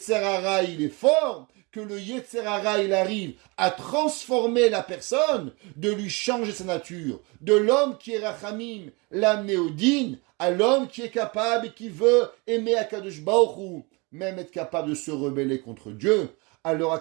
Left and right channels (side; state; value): left; quieter; 28.2 dB